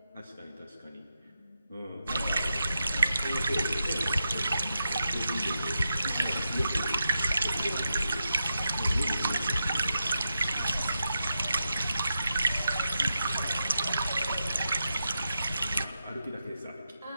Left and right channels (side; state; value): both; inverted; correlation -0.87